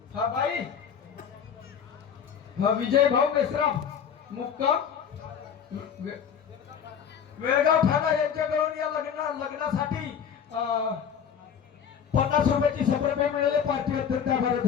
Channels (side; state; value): right; quieter; 7.8 dB